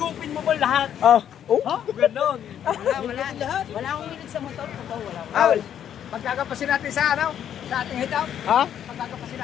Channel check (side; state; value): right; quieter; 9.7 dB